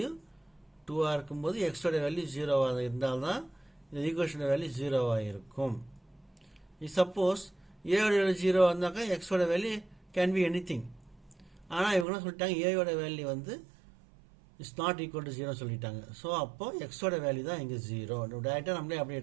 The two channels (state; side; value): drops out; left; at 12.1 s